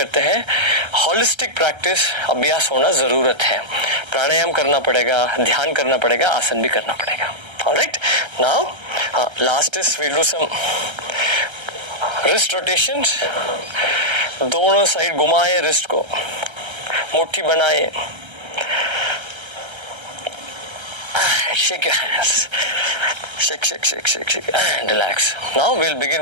हैं, holistic practice अभ्यास होना जरूरत है. प्राणायाम करना पड़ेगा, ध्यान करना पड़ेगा, आसन भी करना पड़ेगा. Alright, now last is we'll do some wrist rotations. दोनों साइड घुमाए wrist को, मुट्ठी बनाए. Shake your hands. Shake and relax. Now we'll begin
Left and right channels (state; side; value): late; left; 1.3 ms